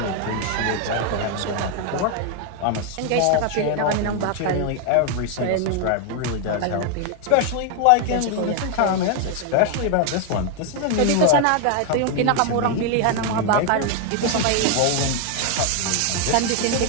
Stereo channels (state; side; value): different; both; correlation 0.01